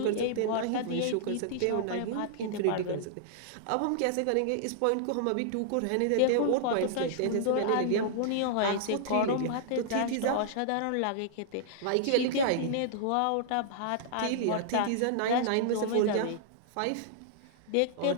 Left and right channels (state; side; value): different; both; correlation -0.01